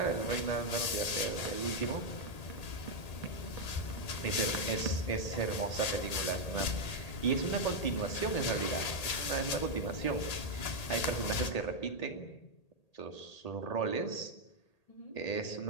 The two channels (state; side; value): late; right; 1.8 ms